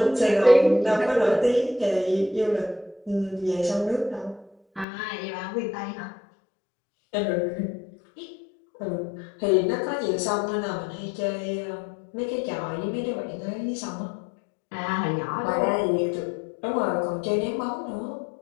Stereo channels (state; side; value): drops out; right; at 4.9 s